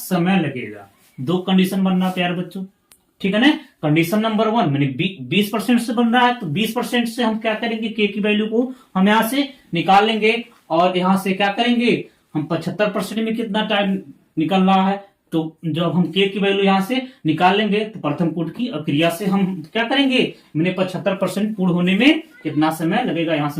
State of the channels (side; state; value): both; identical; correlation 1.00